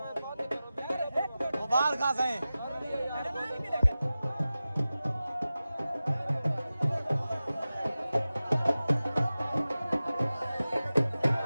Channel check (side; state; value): both; inverted; correlation -0.95